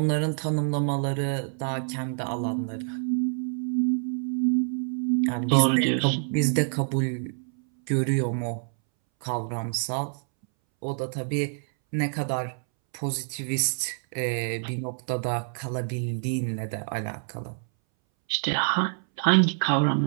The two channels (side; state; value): left; silent; 60 dB below the other